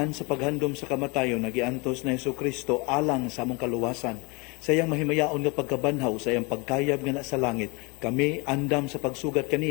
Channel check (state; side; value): quieter; right; 28.5 dB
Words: sa paghandom sa kamatayon, nagiantos na Hesukristo alang sa among kaluwasan. Sa iyang mahimayaon nga pagkabanhaw, sa iyang pagkayab nga na sa langit, kami andam sa pagsugat